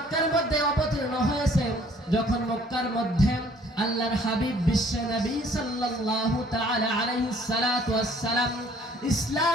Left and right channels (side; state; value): both; normal; correlation 0.58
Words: মধ্যে অবতীর্ণ হয়েছে যখন মক্কার মধ্যে আল্লাহর হাবিব বিশ্বনবী সাল্লাল্লাহু তাআলা আলাইহিস সালাতু ওয়াস সালাম